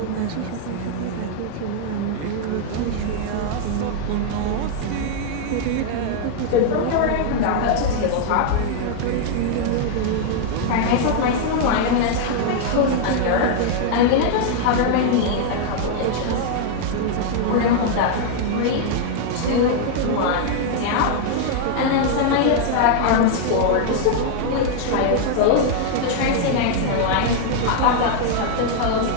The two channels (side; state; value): both; different; correlation -0.01